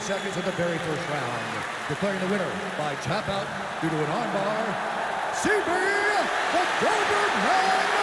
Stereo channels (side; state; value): both; identical; correlation 1.00